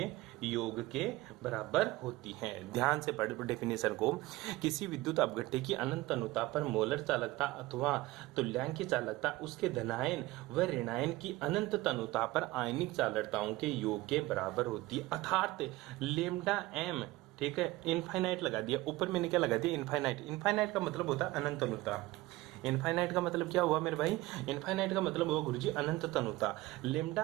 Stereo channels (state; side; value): quieter; left; 18.9 dB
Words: योग के बराबर होती है। ध्यान से पढ़ डेफिनेशन को। किसी विद्युत अपघट्य की अनंत अनुता पर मोलर चालकता अथवा तुल्यांकी चालकता उसके धनायन व ऋणायन की अनंत तनुता पर आयनिक चालकताओं के योग के बराबर होती है। अर्थात लेमडा एम, ठीक है, इनफाइनाइट लगा दिया ऊपर, मैंने क्या लगा दिया? इनफाइनाइट। इनफाइनाइट का मतलब होता है अनंत अनुता। इनफाइनाइट का मतलब क्या हुआ मेरे भाई? इनफाइनाइट का मतलब हुआ गुरुजी अनंत तनुता।